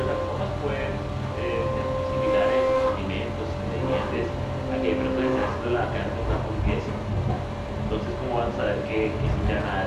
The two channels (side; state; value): both; identical; correlation 1.00